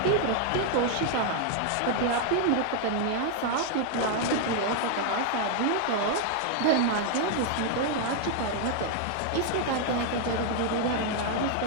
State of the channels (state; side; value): different; both; correlation 0.00